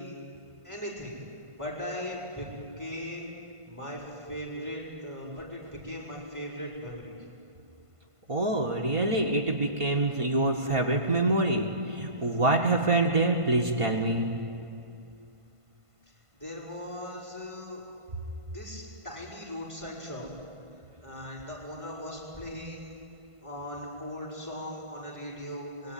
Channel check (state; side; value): late; left; 1.5 ms